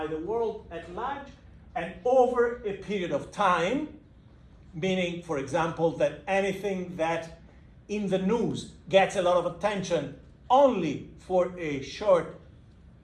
the world at large and over a period of time, meaning, for example, that anything that in the news gets a lot of attention only for a short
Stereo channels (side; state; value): both; identical; correlation 1.00